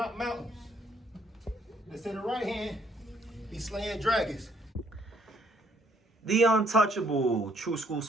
mountains. They say the right hand, be slaying dragons. The untouchable True School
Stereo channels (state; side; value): normal; both; correlation 0.66